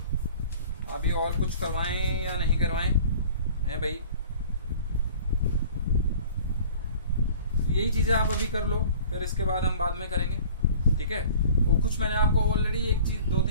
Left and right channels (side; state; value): both; inverted; correlation -0.46